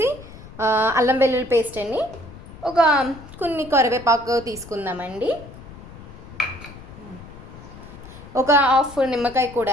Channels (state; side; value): noise; left; rumble, 17 dB below the sound